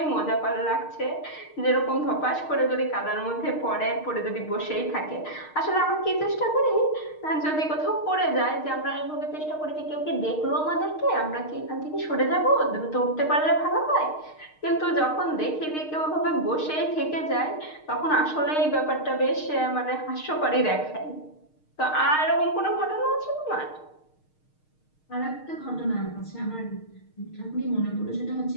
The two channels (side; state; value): right; late; 6.5 ms